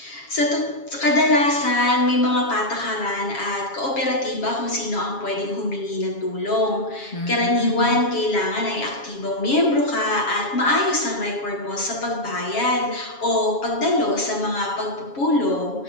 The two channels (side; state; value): right; late; 7.3 ms